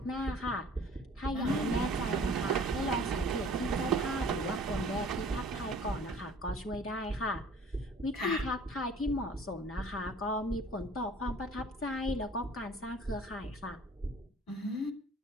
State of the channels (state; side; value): normal; both; correlation 0.49